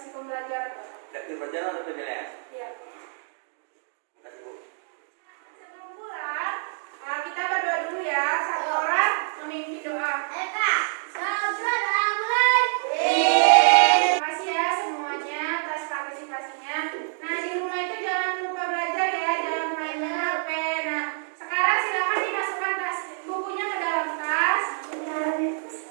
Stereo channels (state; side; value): silent; left; digital silence